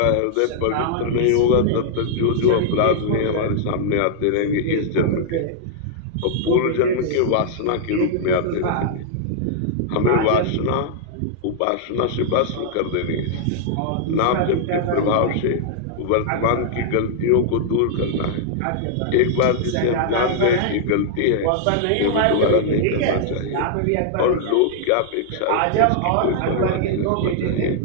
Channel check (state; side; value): different; both; correlation -0.01